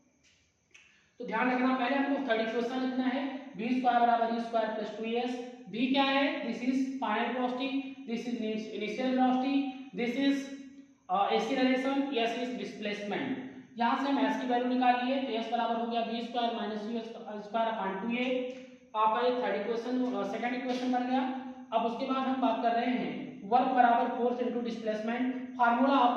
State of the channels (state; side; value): identical; both; correlation 1.00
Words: तो ध्यान रखना, पहले हमको थर्ड इक्वेशन लिखना है, v स्क्वायर बराबर u square plus 2s। v क्या है? This is final velocity, this is initial velocity, this is acceleration, s is displacement. यहां से हम s की वैल्यू निकाल लिए, तो s बराबर हो गया v square minus u square upon 2a। आपका ये थर्ड इक्वेशन, सेकंड इक्वेशन बन गया। अब उसके बाद हम बात कर रहे हैं वर्क बराबर force into displacement, formula